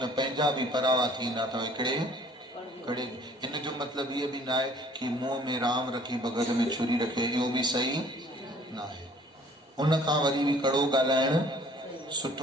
पंहिंजा बि परावा थींदा अथव हिकिड़े कड़े हिन जो मतिलबु इहो बि न आहे कि मुंहं में राम रखी बग़ल में छुरी रखे इहो बि सही न आहे उन खां वरी बि कड़ो ॻाल्हाइण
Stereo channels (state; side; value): normal; both; correlation 0.55